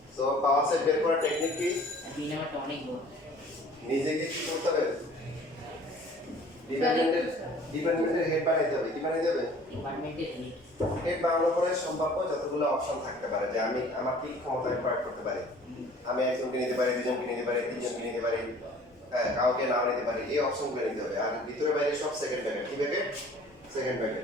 তো পাওয়ার সেট বের করার টেকনিক কি? দুই নাম্বারটা অনেক বড়। নিজেকে কি করতে হবে? ডিপার্টমেন্টের হেড বানাইতে হবে। কি বানাইতে হবে? ডিপার্টমেন্টের হেড বানানোর পরে সম্ভাব্য যতগুলো অপশন থাকতে পারে যে আমি আমার কি ক্ষমতা প্রয়োগ করতে পারি। আমি একজনকে নিতে পারি, দুজনকে নিতে পারি, তিনজনকে নিতে পারি, হ্যাঁ কাউকে নাও নিতে পারি, এই অপশনগুলো নিতে হবে। আর ভিতরে বাইরে সব সেকেন্ড প্যাকেট। কি প্যাকেট? Second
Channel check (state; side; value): normal; both; correlation 0.51